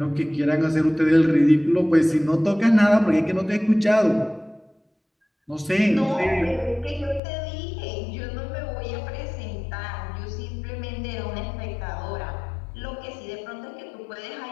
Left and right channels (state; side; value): drops out; right; at 7.2 s